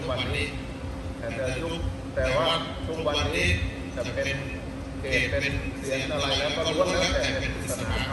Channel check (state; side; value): identical; both; correlation 1.00